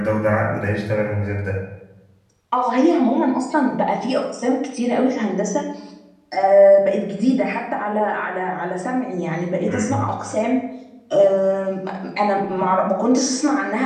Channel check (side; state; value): both; identical; correlation 1.00